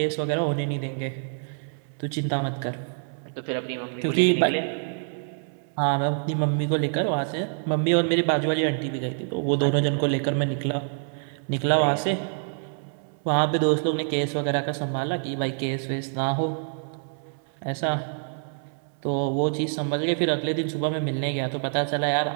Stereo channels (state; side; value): silent; left; 61 dB below the other